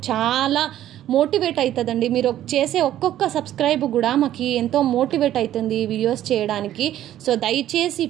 చాలా మోటివేట్ అవుతుందండి. మీరు చేసే ఒక్కొక్క సబ్స్క్రైబ్ కూడా మాకు ఎంతో మోటివేట్ అవుతుంది వీడియోస్ చేయడానికి. సో దయచేసి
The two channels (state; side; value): quieter; left; 12.4 dB